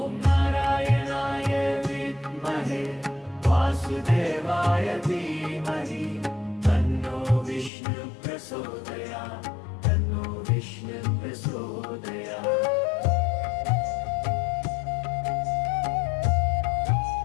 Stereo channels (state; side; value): drops out; right; at 7.7 s